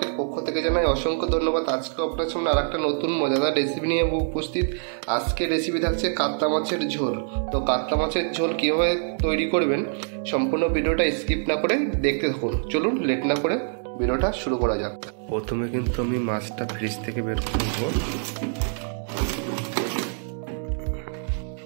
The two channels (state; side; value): silent; left; digital silence